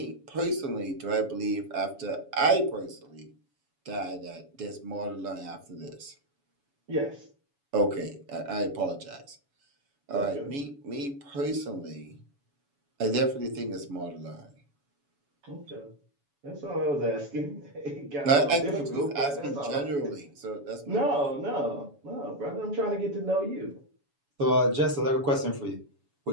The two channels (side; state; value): left; late; 7.1 ms